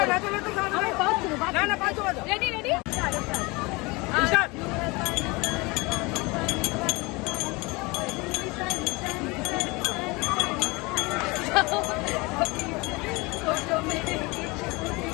না পাঁচ রেডি রেডি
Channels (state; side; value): quieter; right; 25.3 dB